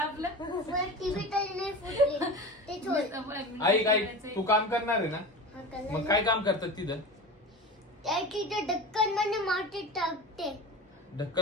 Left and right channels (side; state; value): both; normal; correlation 0.31